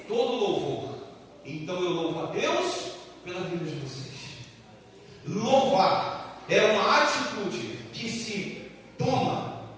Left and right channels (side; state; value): both; identical; correlation 1.00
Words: todo louvor. Então eu louvo a Deus pela vida de vocês. Louvar é uma atitude que se toma